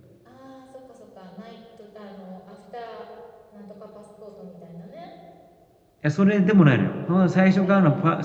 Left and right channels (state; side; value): identical; both; correlation 1.00